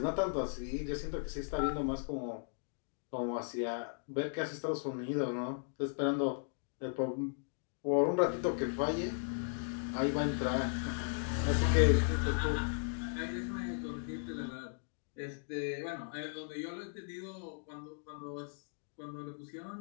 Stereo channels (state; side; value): silent; right; digital silence